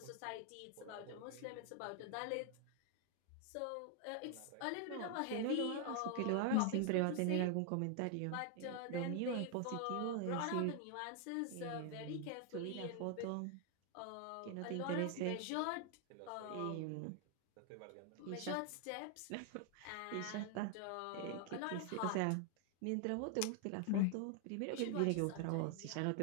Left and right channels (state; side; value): different; both; correlation 0.00